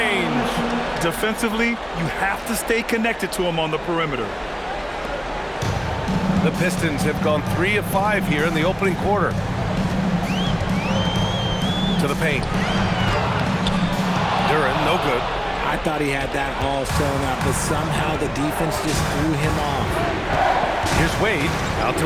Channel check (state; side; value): identical; both; correlation 1.00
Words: Defensively, you have to stay connected to him on the perimeter. The Pistons have gone 3 of 5 here in the opening quarter. To the paint. Duren, no good. I thought he had that all sewn up, but somehow the defense just threw him off. Here's Wade. Out to